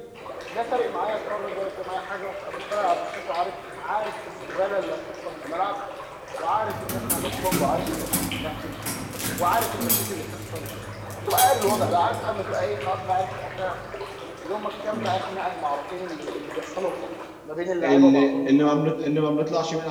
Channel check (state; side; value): identical; both; correlation 1.00